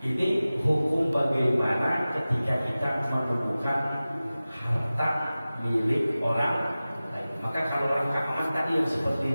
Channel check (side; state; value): both; inverted; correlation -0.96